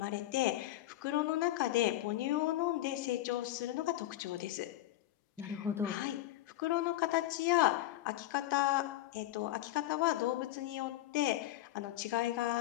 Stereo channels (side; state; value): right; quieter; 15.0 dB